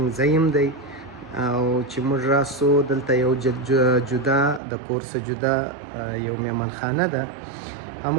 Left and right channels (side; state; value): left; drops out; at 4.6 s